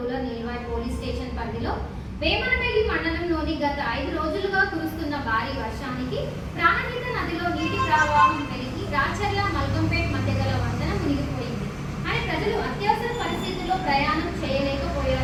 Nilwai police station పరిధిలో వేమనపల్లి మండలంలోని గత 5 రోజులుగా కురుస్తున్న భారీ వర్షానికి ప్రాణహిత నదిలో నీటి ప్రవాహం పెరిగి రాచర్ల మల్కంపేట్ మధ్య గల వంతెన మునిగిపోయింది అని ప్రజలు అత్యవసర పరిస్థితుల్లో ప్రయాణం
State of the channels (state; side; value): identical; both; correlation 1.00